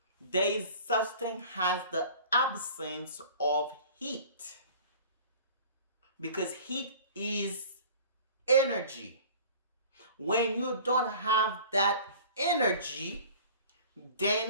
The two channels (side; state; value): both; inverted; correlation -0.44